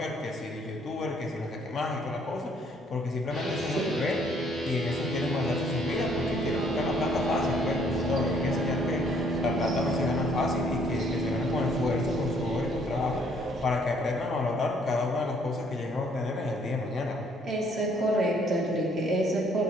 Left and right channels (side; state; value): both; normal; correlation 0.64